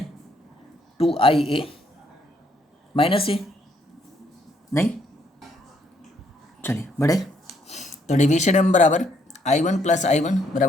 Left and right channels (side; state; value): both; normal; correlation 0.69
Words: 2IA माइनस ए, नहीं चलिए बढ़े। तो डेविएशन m बराबर I1 + I1